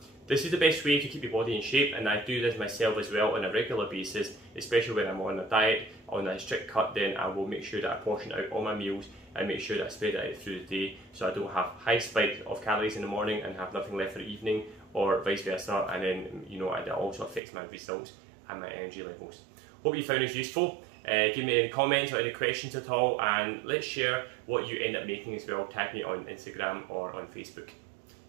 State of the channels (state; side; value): drops out; left; at 17.4 s